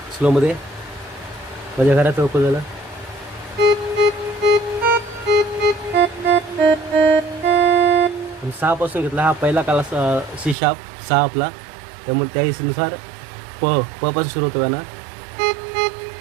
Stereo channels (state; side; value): drops out; left; at 10.6 s